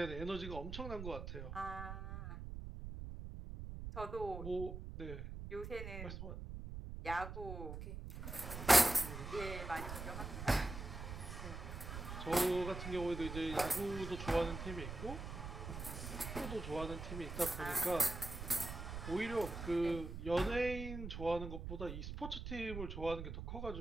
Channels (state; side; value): noise; right; rumble, 7 dB below the sound